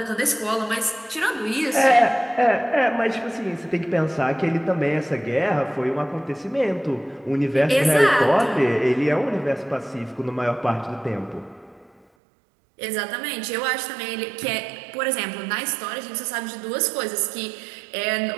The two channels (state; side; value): drops out; left; at 12.1 s